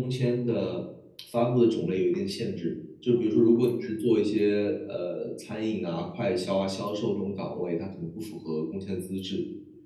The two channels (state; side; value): identical; both; correlation 1.00